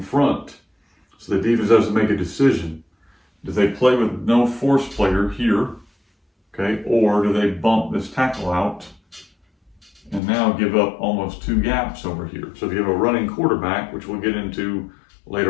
front. So the defense has to make a decision. Do they play with no force player here? Okay. Or do they bump this tackle out and now give up almost two gaps over here? So if you have a running quarterback, which we'll get into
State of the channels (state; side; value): drops out; right; at 10.2 s